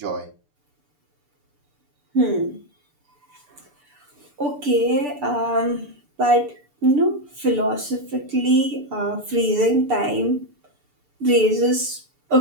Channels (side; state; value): left; late; 6.8 ms